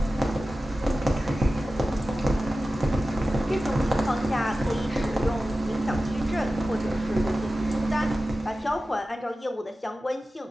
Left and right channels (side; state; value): both; normal; correlation 0.94